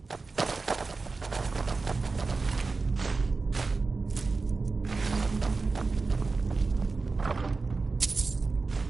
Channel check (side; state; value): left; quieter; 4.0 dB